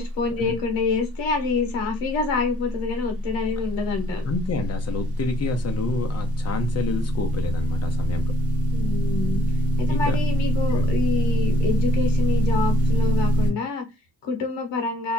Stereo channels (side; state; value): both; normal; correlation 0.62